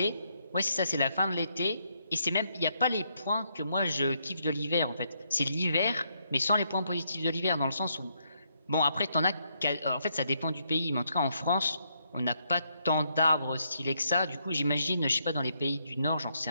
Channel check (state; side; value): inverted; both; correlation -0.76